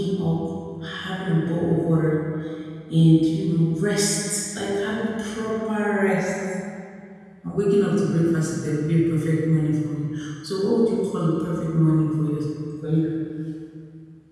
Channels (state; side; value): identical; both; correlation 1.00